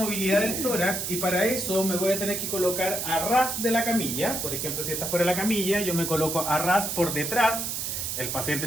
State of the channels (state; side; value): noise; right; hiss, 3 dB below the sound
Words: del tórax y para eso me voy a tener que colocar a ras de la camilla. Por ejemplo, si esta fuera la camilla, yo me coloco a ras por detrás. El